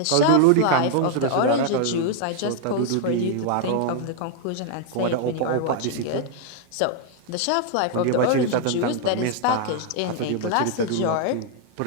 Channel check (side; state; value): both; different; correlation 0.00